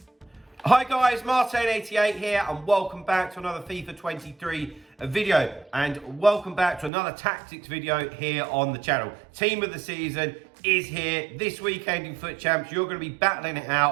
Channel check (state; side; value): drops out; left; at 6.9 s